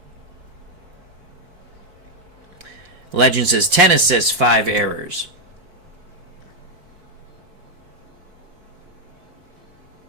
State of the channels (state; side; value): late; left; 4.5 ms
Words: Legend says 10 assists, 5 errors.